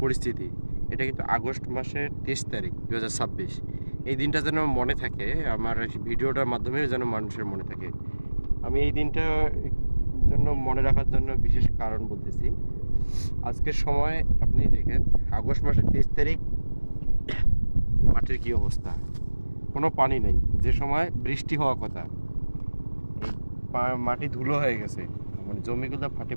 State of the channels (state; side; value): inverted; both; correlation -1.00